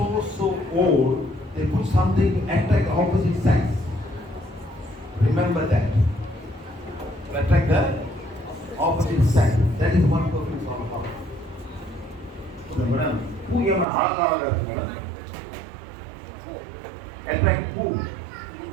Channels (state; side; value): drops out; left; at 13.9 s